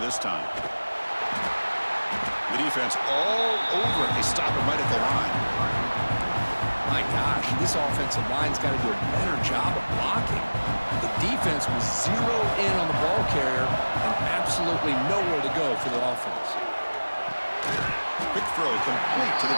this time. The defense all over it. They stop him right at the line. My gosh, this offensive line's got to do a better job of blocking. The defense was zeroed in on the ball carrier and absolutely nowhere to go for the offense. Quick throw complete to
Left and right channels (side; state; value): both; inverted; correlation -1.00